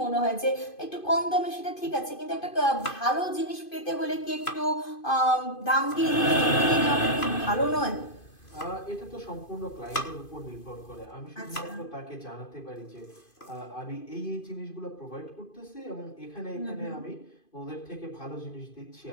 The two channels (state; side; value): late; right; 2.5 ms